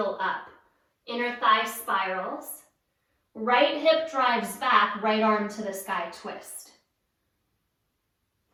up. Inner thigh spirals. Right hip drives back, right arm to the sky, twist.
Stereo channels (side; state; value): both; identical; correlation 1.00